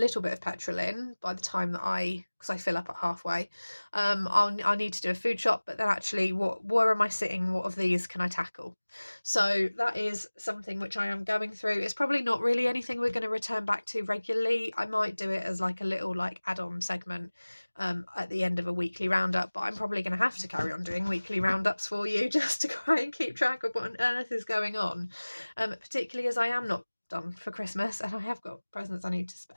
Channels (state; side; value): inverted; both; correlation -1.00